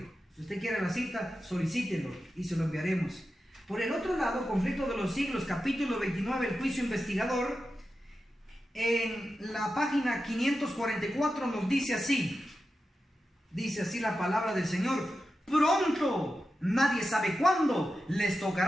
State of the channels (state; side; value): normal; both; correlation 0.91